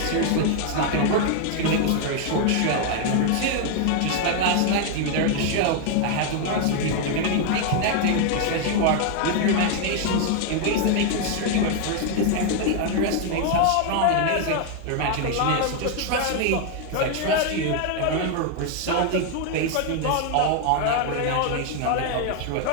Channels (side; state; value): both; different; correlation 0.00